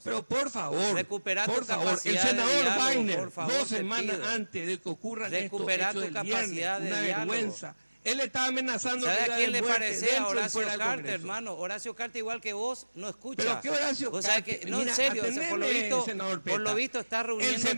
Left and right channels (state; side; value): inverted; both; correlation -1.00